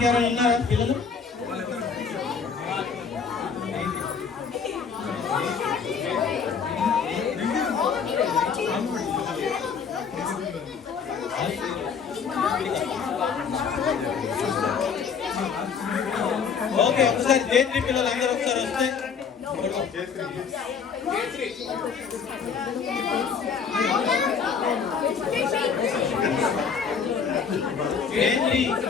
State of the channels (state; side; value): quieter; right; 6.2 dB